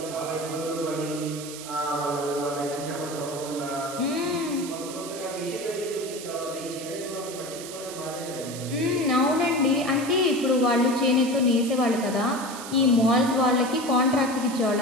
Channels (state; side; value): noise; right; hiss, 12 dB below the sound